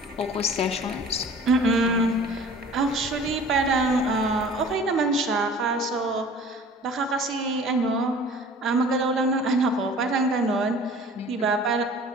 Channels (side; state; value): both; normal; correlation 0.46